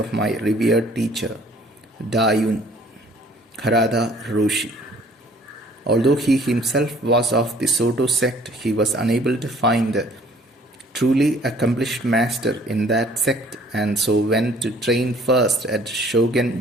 my revered teacher, Dayun Harada Roshi. Although he himself was of the Soto sect, he was unable to find a truly accomplished master in that sect, and so went to train first at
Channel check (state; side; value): normal; both; correlation 0.56